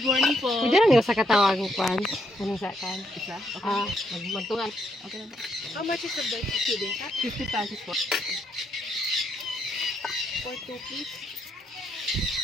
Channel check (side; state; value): both; normal; correlation 0.75